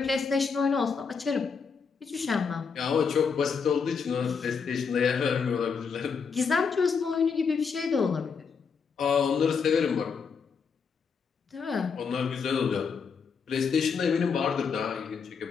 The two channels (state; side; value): quieter; right; 5.8 dB